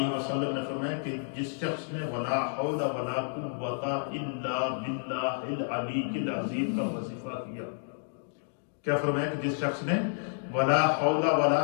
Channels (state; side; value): silent; right; digital silence